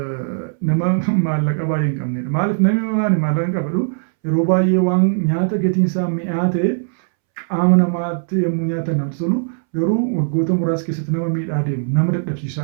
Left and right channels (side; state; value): left; silent; 67 dB below the other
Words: nama maallaqa baay'ee hin qabnedha. Maaliif namni maallaqa hin qabadu yeroo baay'ee waan nyaata gatiin isaa mi'aa ta'e qaama namaatti yommuu nyaatan namatti tolu garuu waggoota muraasa keessatti nama miidhaa deemu, nama